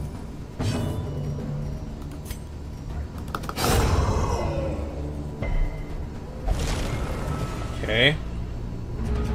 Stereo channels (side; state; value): both; identical; correlation 1.00